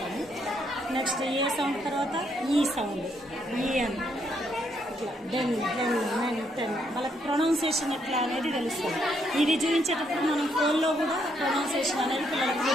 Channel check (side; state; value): both; normal; correlation 0.74